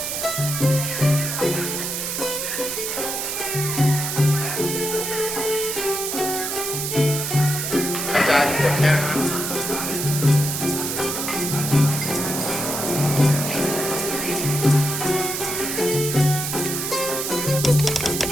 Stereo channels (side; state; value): right; noise; hiss, 3 dB below the sound